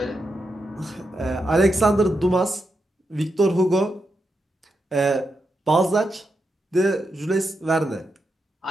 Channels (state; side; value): normal; both; correlation 0.85